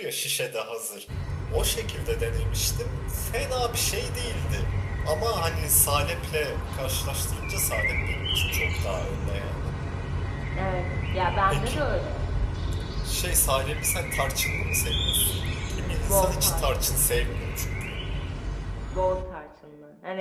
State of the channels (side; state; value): both; identical; correlation 1.00